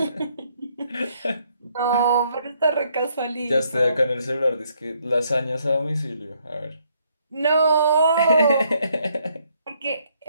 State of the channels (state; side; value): inverted; both; correlation -0.70